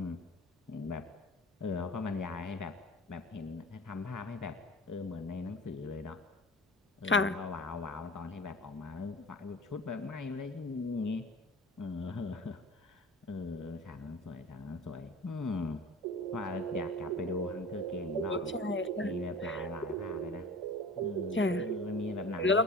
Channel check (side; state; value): both; normal; correlation 0.38